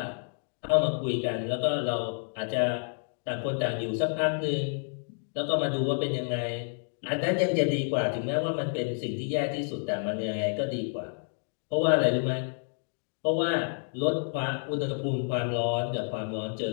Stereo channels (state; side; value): silent; right; 58 dB below the other